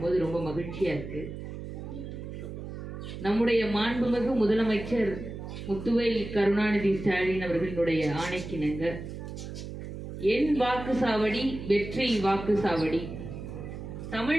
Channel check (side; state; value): right; noise; hum, 9 dB below the sound